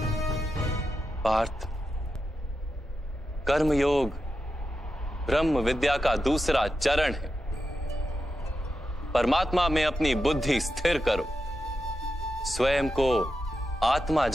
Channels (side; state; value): both; normal; correlation 0.89